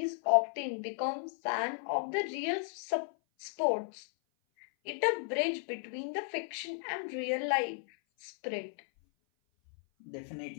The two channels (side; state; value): right; silent; 55 dB below the other